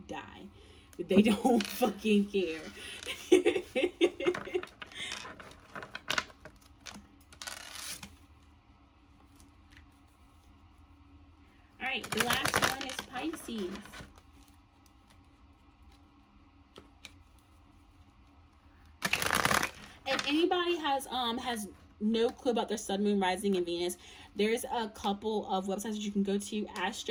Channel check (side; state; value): both; identical; correlation 1.00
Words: die. They don't fucking care. All right, the last one is Pisces. If anybody has no clue about their sun, moon, rising, and Venus, there's a couple of websites that you can go to: